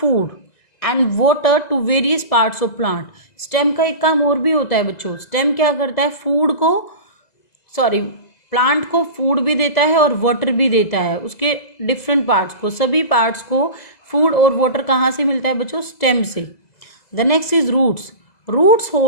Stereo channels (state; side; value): late; right; 2.0 ms